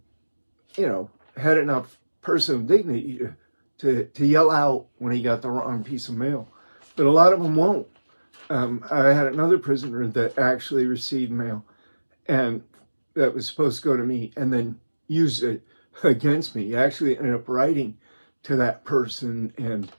had enough personal dignity to yell out when he got the wrong piece of mail. But a lot of them won't. I had another prisoner that actually received mail, and that was supposed to go to me, and then used it against me. He actually ended up writing to that person and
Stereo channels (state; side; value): inverted; both; correlation -1.00